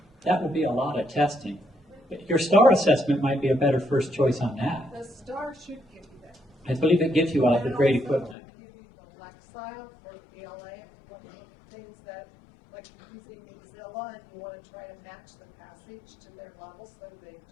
That would be a lot of testing. But your STAR assessment might be a better first choice on that. The STAR should give you that. I believe it gives you all the grade And also equivalent. give you the Lexile for BLA, one of the things that, using Excel formula and you want to try to match the passage to their level so they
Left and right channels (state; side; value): drops out; right; at 8.3 s